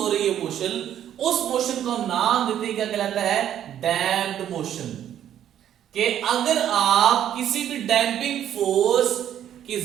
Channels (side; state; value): left; quieter; 10.5 dB